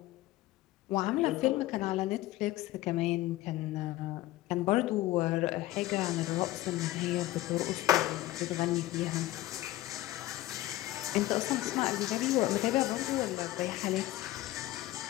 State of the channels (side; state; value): right; quieter; 16.6 dB